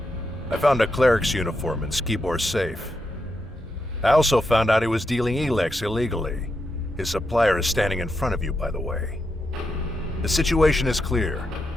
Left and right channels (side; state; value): both; normal; correlation 0.84